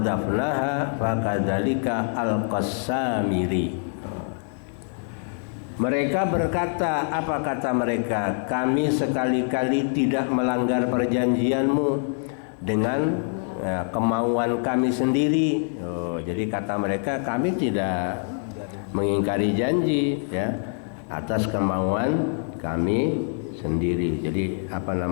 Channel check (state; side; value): silent; right; 60 dB below the other